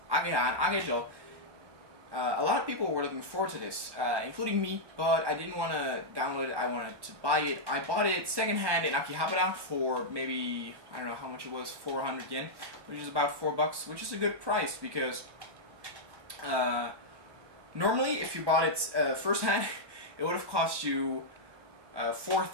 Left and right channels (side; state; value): left; late; 1.1 ms